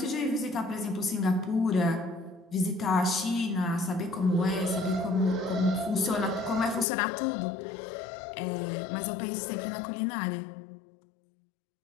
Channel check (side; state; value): right; drops out; at 6.9 s